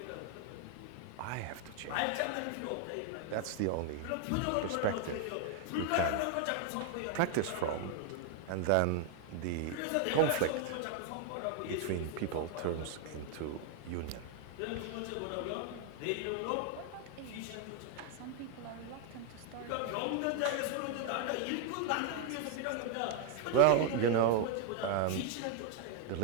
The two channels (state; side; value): different; both; correlation 0.00